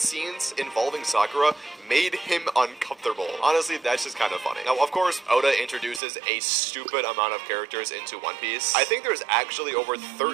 scenes involving Sakura made him uncomfortable. Honestly, that's just kind of funny. Now, of course, Oda introduces a stupid amount of characters into One Piece. I think there's actually over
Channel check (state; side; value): drops out; left; at 6.0 s